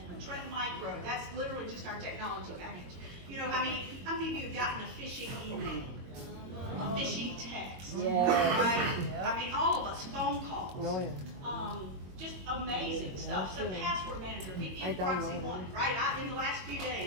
trend micro. That's literally just our technology package. You know, how many of you have gotten a phishing email, a phishing text, right? I mean, all of us, phone calls, just amazing stuff. So password manager, VPN proxy one, right? In the last few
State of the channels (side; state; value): left; late; 22 ms